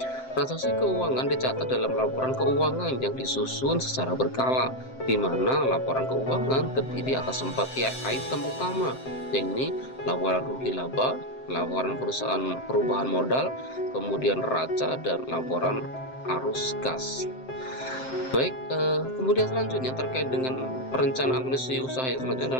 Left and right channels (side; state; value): right; late; 7.7 ms